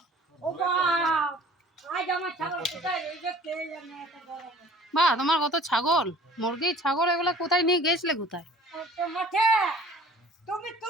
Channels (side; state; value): both; normal; correlation 0.49